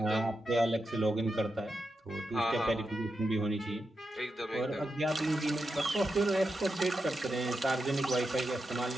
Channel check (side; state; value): both; normal; correlation 0.87